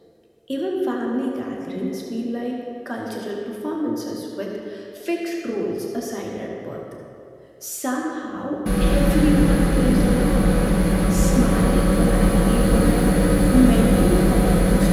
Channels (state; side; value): identical; both; correlation 1.00